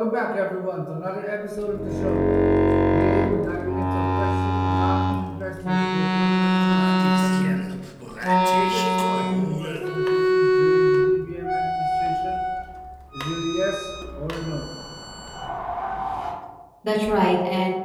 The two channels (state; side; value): identical; both; correlation 1.00